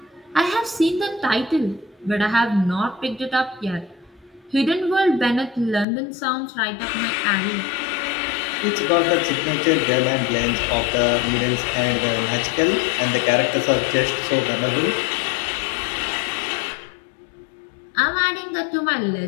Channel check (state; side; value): drops out; right; at 5.9 s